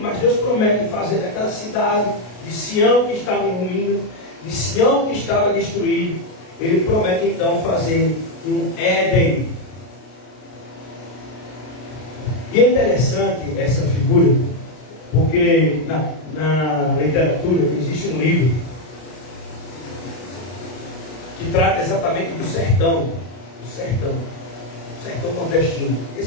mas Deus promete fazer daquela cidade de Sião que estava em ruínas, de Sião que estava destruído, Ele promete então fazer um Éden. E é interessante essa figura, porque na literatura existe um livro que trata exatamente do sertão nordestino,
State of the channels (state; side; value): late; right; 33 ms